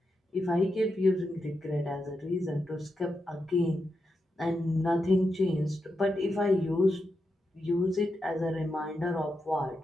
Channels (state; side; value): normal; both; correlation 0.86